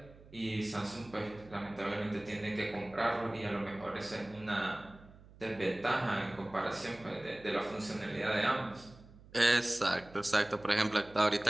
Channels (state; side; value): noise; right; hum, 22 dB below the sound